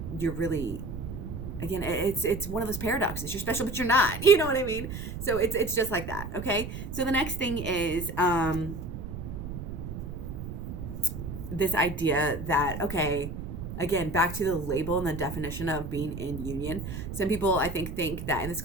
really, again, it's one of those paradoxes. You're special, but you're not, you know what I mean? So it's just like that. Okay. So the next thing is, this idea that, okay, again, back to the label and the definition of being in union. Some people, I think that, and this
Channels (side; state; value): right; noise; rumble, 7 dB below the sound